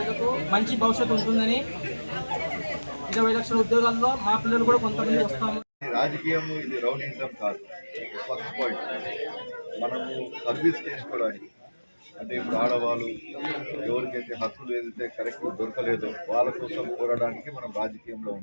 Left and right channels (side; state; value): both; inverted; correlation -1.00